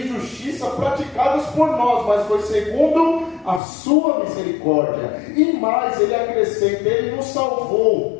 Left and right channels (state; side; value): drops out; right; at 3.6 s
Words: justiça praticadas por nós, mas foi segundo a sua misericórdia. E mais, ele acrescenta, ele nos